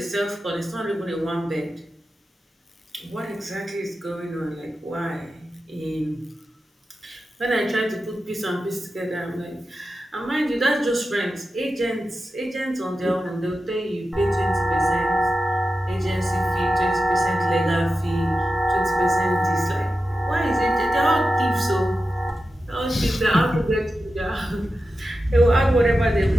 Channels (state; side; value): normal; both; correlation 0.91